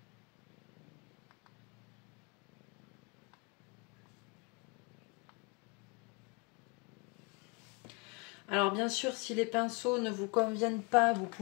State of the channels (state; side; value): quieter; right; 30.8 dB